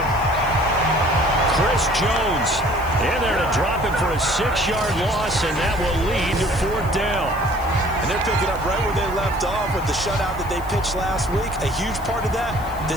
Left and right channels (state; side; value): noise; left; hiss, 20 dB below the sound